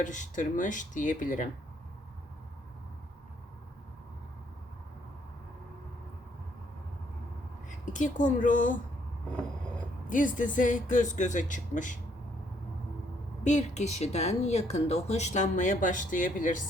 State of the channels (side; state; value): both; normal; correlation 0.69